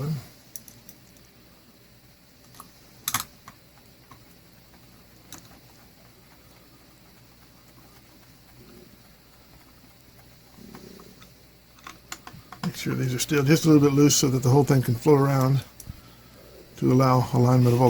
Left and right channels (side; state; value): both; identical; correlation 1.00